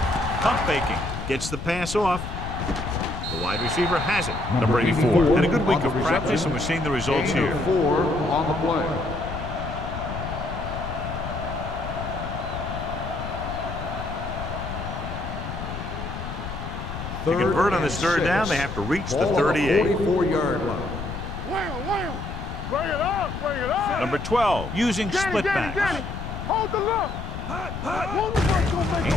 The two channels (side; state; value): left; noise; rumble, 7 dB below the sound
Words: Pump faking. Gets the pass off. The wide receiver has it. Number 84. Had a good week of practice, and we're seeing the results here. 4 on the play. To convert on this third down, they have to reach the 38. 44-yard line. Wham. Bring it up. Bring it up. Number 12, using split backs. Hold the look.